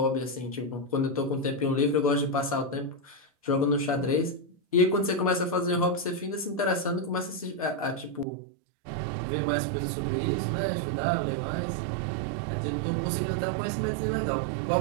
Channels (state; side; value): drops out; left; at 8.2 s